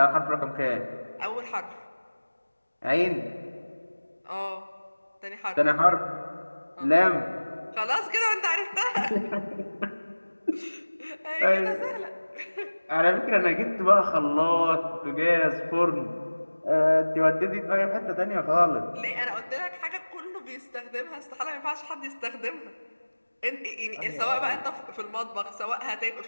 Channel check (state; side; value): inverted; both; correlation -1.00